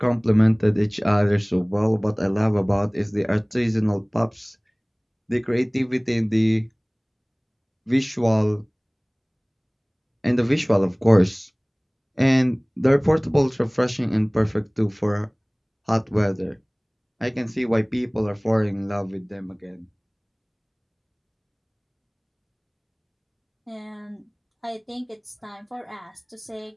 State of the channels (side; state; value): both; identical; correlation 1.00